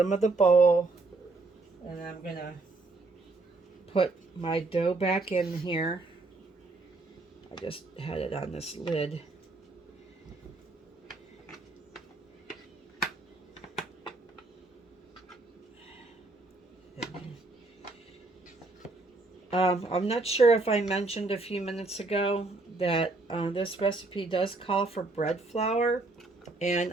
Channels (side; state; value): left; quieter; 3.3 dB